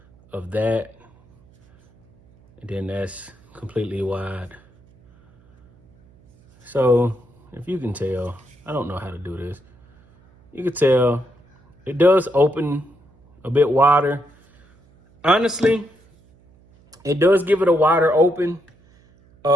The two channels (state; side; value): noise; right; hum, 30 dB below the sound